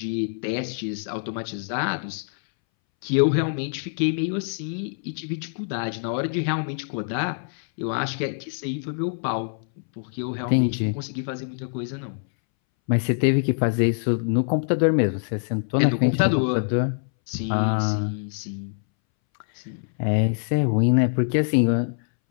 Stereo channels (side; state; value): right; silent; 62 dB below the other